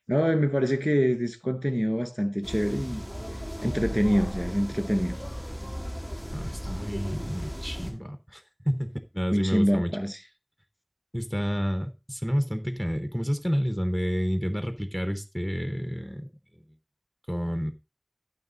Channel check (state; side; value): identical; both; correlation 1.00